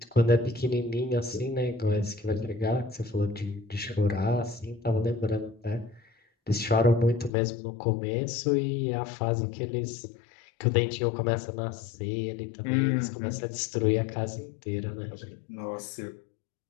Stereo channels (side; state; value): right; drops out; at 7.3 s